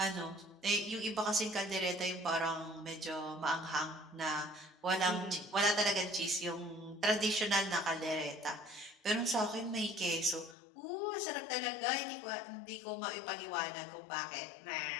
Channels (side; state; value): right; drops out; at 10.6 s